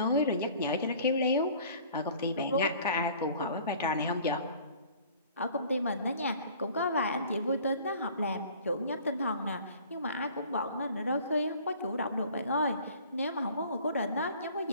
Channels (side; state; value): both; inverted; correlation -0.50